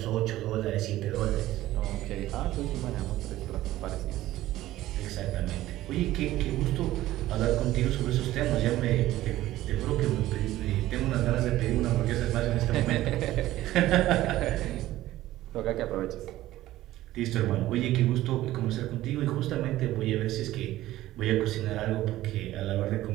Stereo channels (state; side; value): quieter; left; 15.3 dB